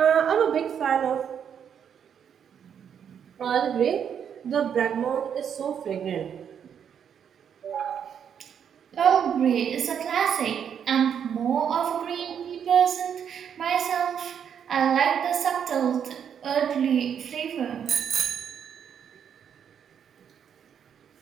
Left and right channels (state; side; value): quieter; left; 8.2 dB